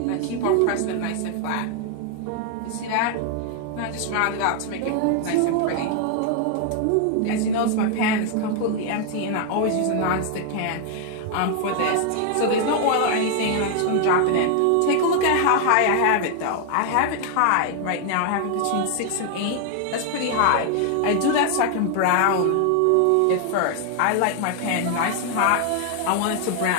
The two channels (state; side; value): different; both; correlation 0.00